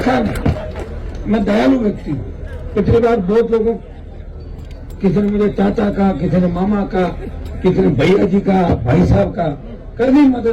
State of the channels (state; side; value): identical; both; correlation 1.00